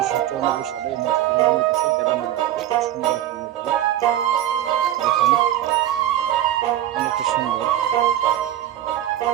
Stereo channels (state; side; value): quieter; left; 12.5 dB